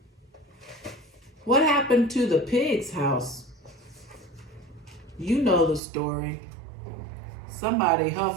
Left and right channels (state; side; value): drops out; left; at 5.8 s